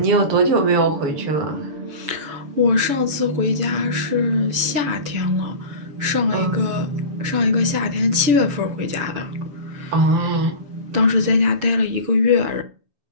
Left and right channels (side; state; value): left; late; 6.9 ms